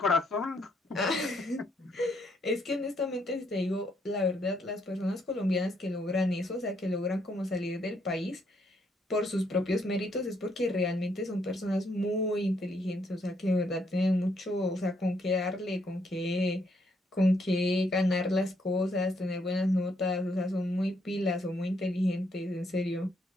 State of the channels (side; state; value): both; normal; correlation 0.73